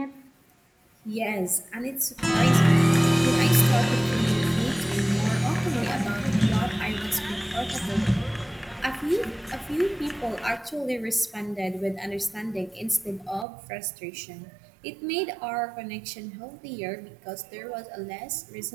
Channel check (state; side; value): drops out; left; at 13.5 s